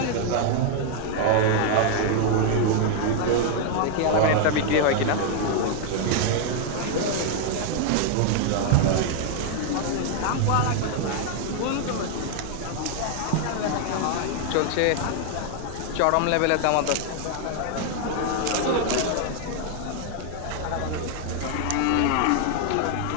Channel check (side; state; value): both; different; correlation 0.00